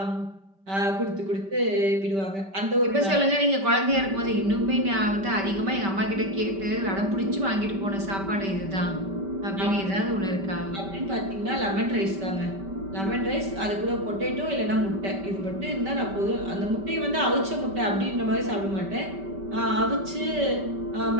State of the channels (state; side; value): late; left; 5.2 ms